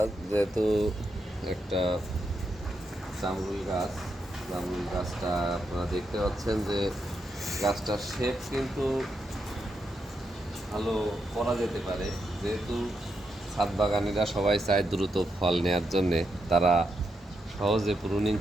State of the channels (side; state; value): both; normal; correlation 0.83